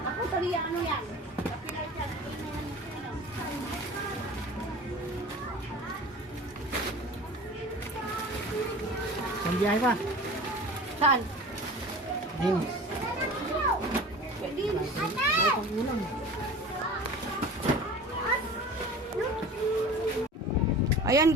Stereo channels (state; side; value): normal; both; correlation 0.38